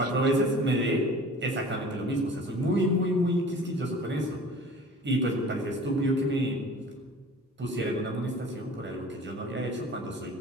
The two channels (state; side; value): normal; both; correlation 0.44